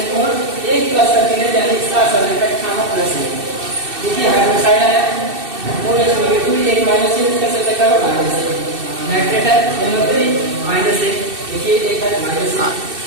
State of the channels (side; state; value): left; late; 2.6 ms